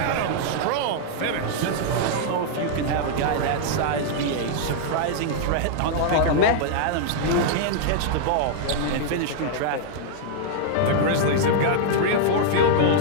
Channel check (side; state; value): both; different; correlation -0.01